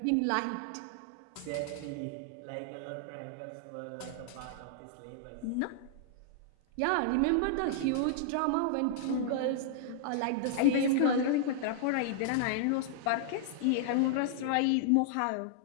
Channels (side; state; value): both; different; correlation -0.01